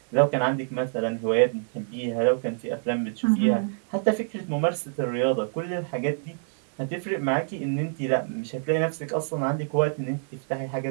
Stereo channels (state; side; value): silent; left; digital silence